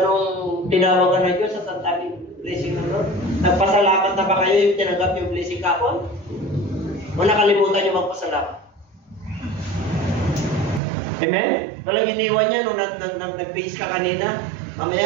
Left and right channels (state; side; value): drops out; left; at 10.8 s